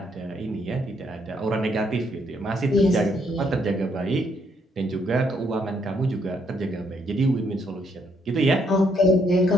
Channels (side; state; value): both; normal; correlation 0.72